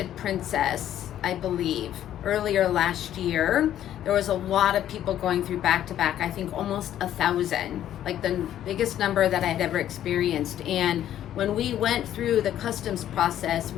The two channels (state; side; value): quieter; right; 11.5 dB